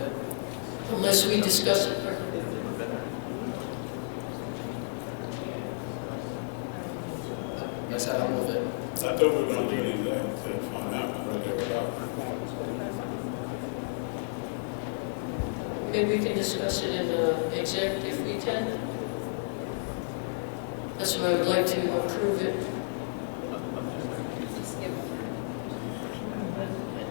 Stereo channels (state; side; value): silent; right; digital silence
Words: unless we discuss it. I said I'll move it. I thought we were going to an exec to find out what they were about. Maybe we can discuss it in exec if we can. That's why I would like to approve it.